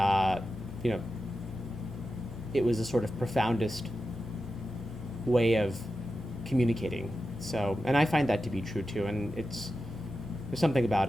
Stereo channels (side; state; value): both; normal; correlation 0.91